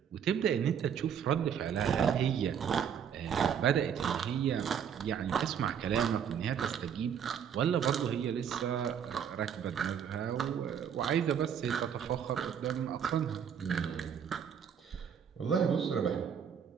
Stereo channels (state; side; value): quieter; left; 8.1 dB